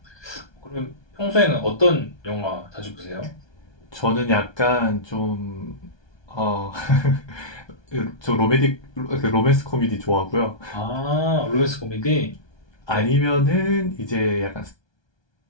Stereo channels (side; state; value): right; late; 1.2 ms